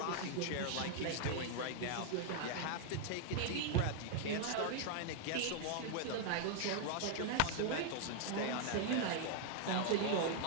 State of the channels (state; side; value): different; both; correlation 0.00